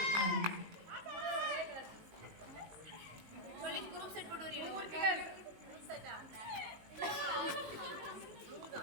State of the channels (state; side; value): late; left; 19 ms